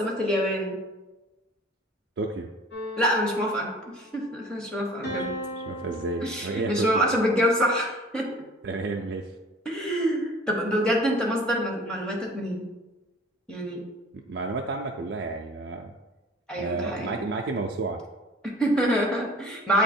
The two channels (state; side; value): normal; both; correlation 0.46